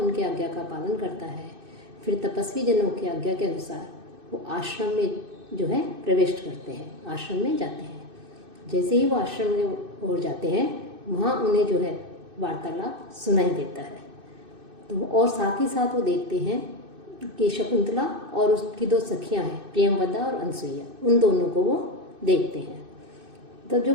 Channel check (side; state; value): left; late; 2.6 ms